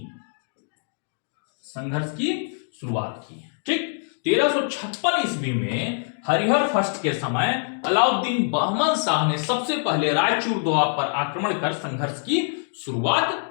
ठीक, 1356 ईस्वी में हरिहर फर्स्ट के समय अलाउद्दीन बहमन शाह ने सबसे पहले रायचूर दोआब पर आक्रमण कर संघर्ष की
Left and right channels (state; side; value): silent; right; 62 dB below the other